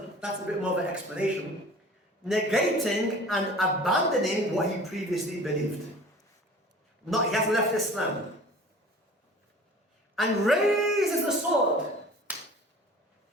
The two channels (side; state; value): both; normal; correlation 0.44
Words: that's a bit more of an explanation, negating and abandoning what he previously believed. Not, he hasn't left Islam. And raises the sword.